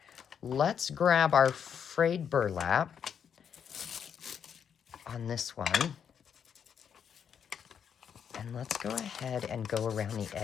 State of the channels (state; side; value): quieter; right; 7.8 dB